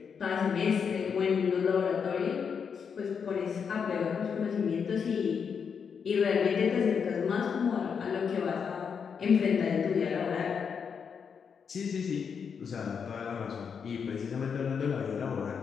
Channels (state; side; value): quieter; right; 6.6 dB